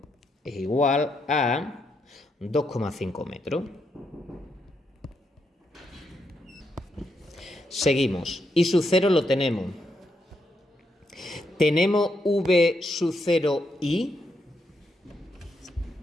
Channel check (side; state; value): both; normal; correlation 0.80